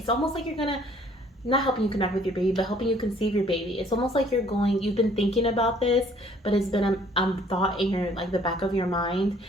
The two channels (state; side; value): normal; both; correlation 0.59